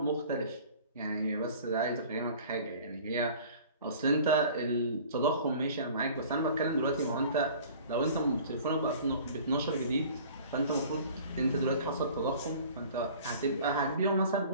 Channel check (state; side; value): inverted; both; correlation -0.46